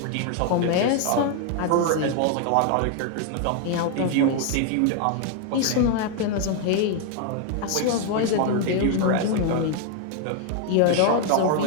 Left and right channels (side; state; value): both; different; correlation 0.00